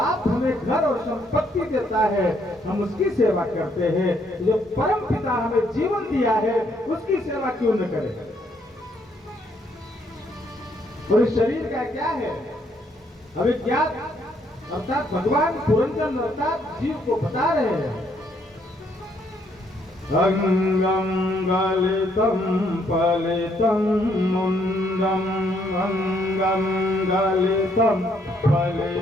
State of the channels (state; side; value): normal; both; correlation 0.70